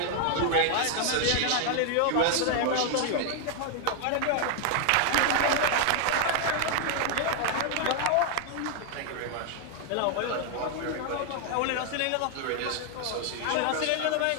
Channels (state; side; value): different; both; correlation 0.00